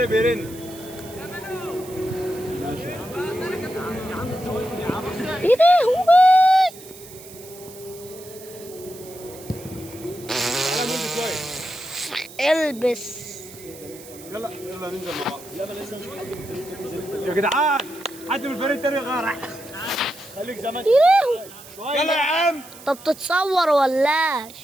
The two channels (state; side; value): noise; right; hiss, 18 dB below the sound